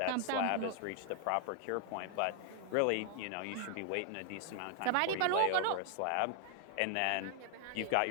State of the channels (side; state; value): both; different; correlation 0.00